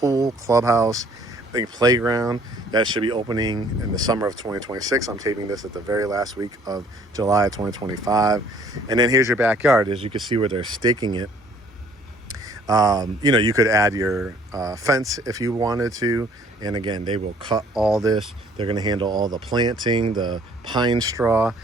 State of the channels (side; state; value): both; normal; correlation 0.58